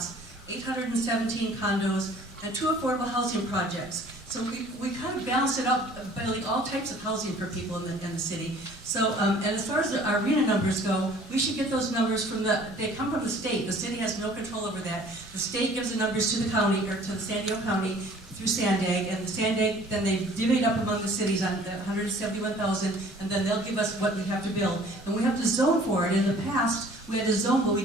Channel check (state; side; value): normal; both; correlation 0.52